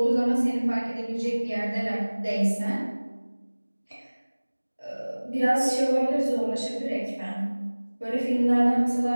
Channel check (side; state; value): both; inverted; correlation -1.00